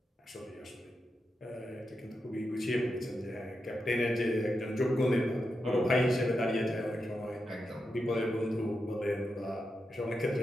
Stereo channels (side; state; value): both; normal; correlation 0.87